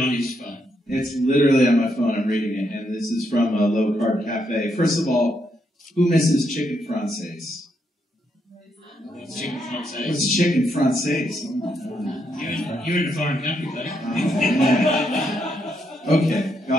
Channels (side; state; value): both; normal; correlation 0.78